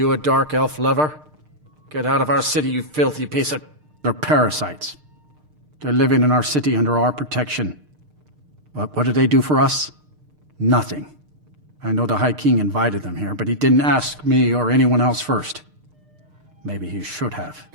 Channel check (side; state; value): left; late; 6.6 ms